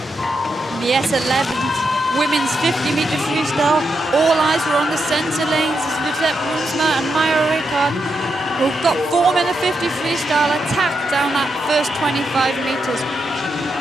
The S11 women's 50-meter freestyle, all eyes were on the centre lanes as Lieutenant Brunsma and Maya Ricard, who got form in the 50 freestyle, attacked down that first 25 meters.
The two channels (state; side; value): normal; both; correlation 0.84